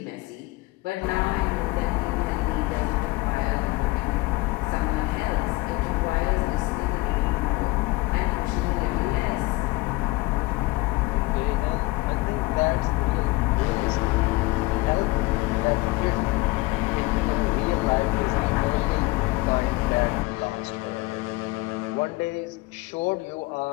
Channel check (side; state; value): right; quieter; 21.7 dB